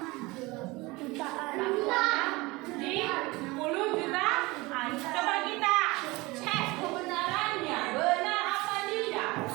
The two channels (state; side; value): quieter; left; 22.6 dB